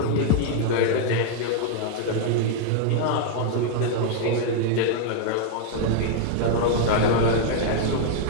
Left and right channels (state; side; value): different; both; correlation 0.00